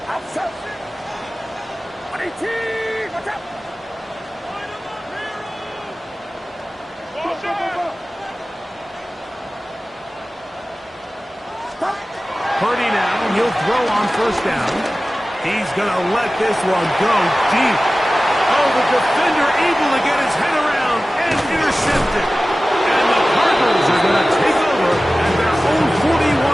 Outside. 18. Watch out. Purdy now, he'll throw on 1st down. He's going to let this one go deep. Oh, the defender able to get his head around and intercept it. And the Cardinals are going to take over at their own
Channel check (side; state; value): both; normal; correlation 0.96